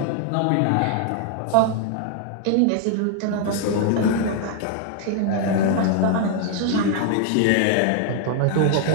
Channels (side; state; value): both; different; correlation 0.00